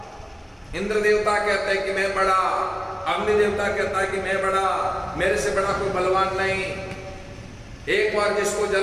इंद्र देवता कहते हैं कि मैं बड़ा, अग्नि देवता कहता है कि मैं बड़ा, मेरे से बड़ा कोई बलवान नहीं। एक बार जिसको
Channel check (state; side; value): identical; both; correlation 1.00